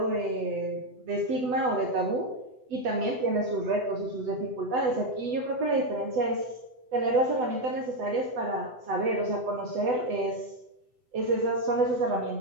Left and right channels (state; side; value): late; left; 8.0 ms